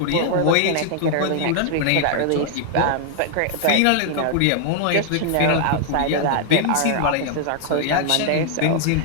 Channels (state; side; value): different; both; correlation 0.00